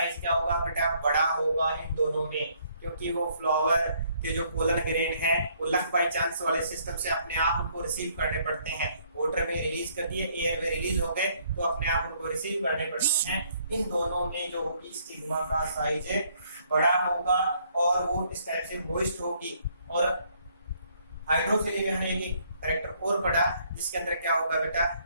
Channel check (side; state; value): both; inverted; correlation -0.66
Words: क्या होगा बेटा? बड़ा होगा इन दोनों में, क्योंकि वो फ्लावर के जो पोलन ग्रेन है वो लक बाई चांस वाले सिस्टम से अपने आप उनको रिसीव करने पड़ते हैं। वाटर में रिलीज कर दिए, एयर में रिलीज हो गए तो अपने आप उनको रिसीव करने पड़ते हैं। इन दोनों में जो होगी स्टिग्मा का साइज बड़ा होगा और वो इस टाइप से मॉइस्ट होगी। और हाइड्रोफिली में हमने एक कैरेक्टर और पढ़ा जिसके अंदर क्या होगा बेटा?